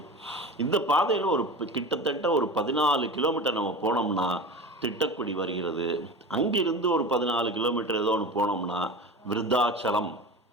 இந்த பாதையில் கிட்டத்தட்ட ஒரு 14 கிலோமீட்டர் நம்ம போனோம்னா திட்டக்குடி வருகிறது. அங்கிருந்து ஒரு 14 கிலோமீட்டர் ஏதோ ஒன்று போனோம்னா விருத்தாச்சலம்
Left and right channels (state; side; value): normal; both; correlation 0.31